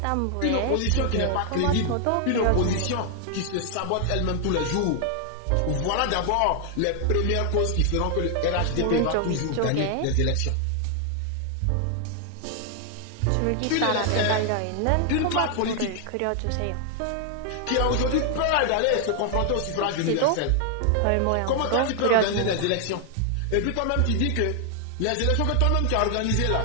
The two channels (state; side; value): different; both; correlation 0.00